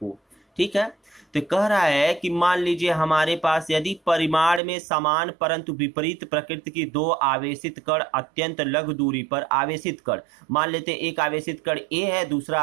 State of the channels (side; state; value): left; drops out; at 4.6 s